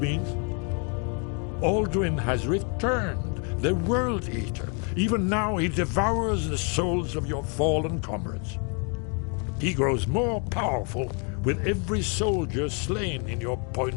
Alduin has returned, the World Eater. Even now he devours the souls of your fallen comrades. He grows more powerful with every soldier slain in your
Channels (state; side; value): quieter; right; 38.0 dB